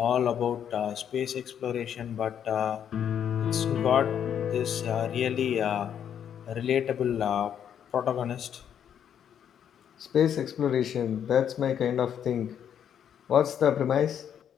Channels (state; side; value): quieter; right; 9.0 dB